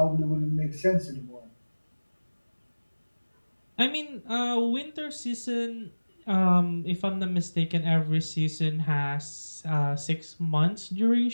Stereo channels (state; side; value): inverted; both; correlation -1.00